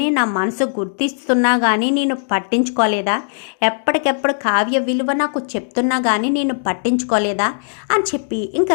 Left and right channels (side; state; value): right; silent; digital silence